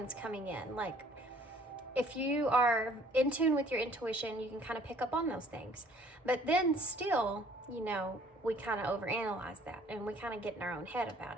coming in. Like, if you are in tune with your intuition, you can kind of pick up on those things. But then still, we kind of overanalyze that and we kind of get in our own head about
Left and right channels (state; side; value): normal; both; correlation 0.57